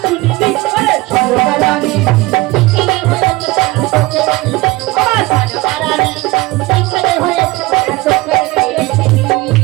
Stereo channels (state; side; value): quieter; left; 21.1 dB